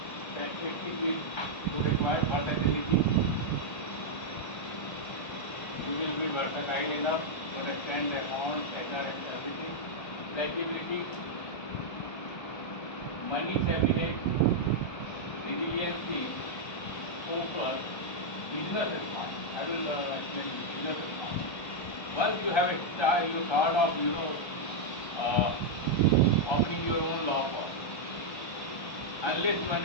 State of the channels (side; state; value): right; late; 1.3 ms